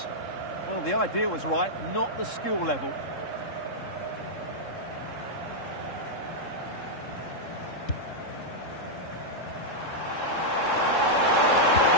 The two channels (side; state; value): right; late; 3.7 ms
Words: Well, the idea was right, not the skill level.